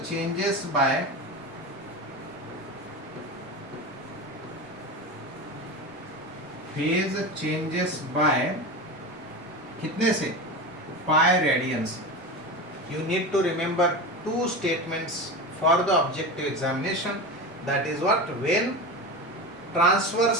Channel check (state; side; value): normal; both; correlation 0.25